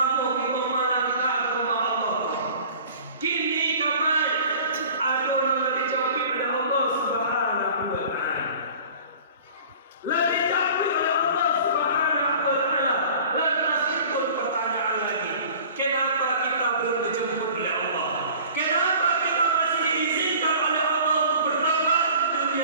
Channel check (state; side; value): inverted; both; correlation -0.45